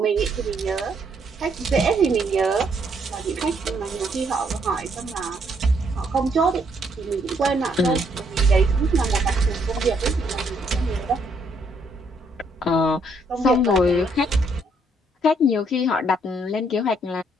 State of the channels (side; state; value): both; normal; correlation 0.70